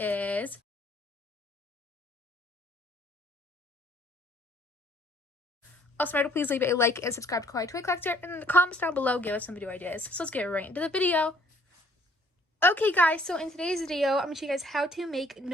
Also remember to please leave a like and subscribe to Kawaii Toy Collector, and in the comments down below, give us some video ideas. So let's get right into the video. Okay guys, so in today's video, I'm going to show you guys how to make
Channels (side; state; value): both; normal; correlation 0.61